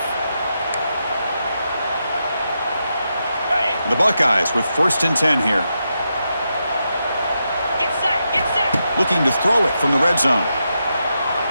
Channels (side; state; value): both; inverted; correlation -0.85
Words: The Buckeyes with 1st and 10 here. Get set. Looking to throw it from the red zone.